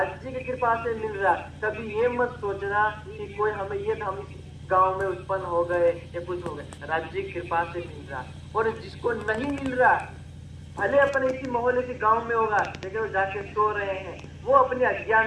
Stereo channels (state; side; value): identical; both; correlation 1.00